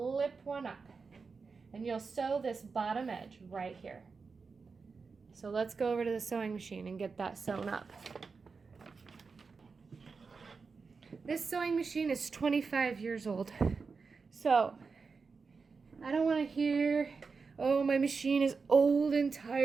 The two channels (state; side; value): quieter; left; 4.8 dB